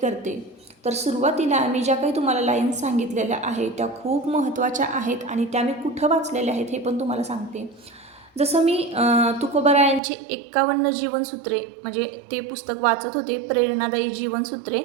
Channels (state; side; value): drops out; left; at 10.0 s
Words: तर सुरुवातीला मी ज्या काही तुम्हाला लाईन्स सांगितलेल्या आहेत त्या खूप महत्त्वाच्या आहेत आणि त्या मी कुठं वाचलेल्या आहेत हे पण तुम्हाला सांगते. जसं मी तुकोबारायांची 51 जीवनसूत्रे म्हणजे ते पुस्तक वाचत होते, प्रेरणादायी जीवनसूत्रे.